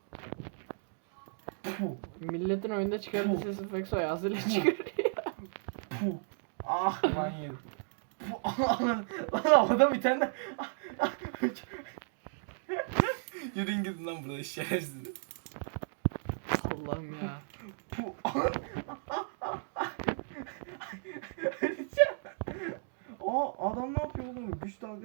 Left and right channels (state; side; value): silent; left; digital silence